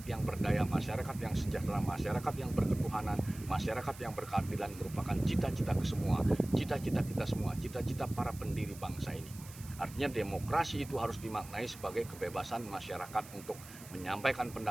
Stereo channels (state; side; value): noise; right; hiss, 17 dB below the sound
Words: yang berdaya, masyarakat yang sejahtera, masyarakat yang berketuhanan, masyarakat yang berkeadilan merupakan cita-cita kita semua, cita-cita para pendiri bangsa ini. Artinya demokrasi itu harus dimaknai sebagai kebebasan masyarakat untuk menyampaikan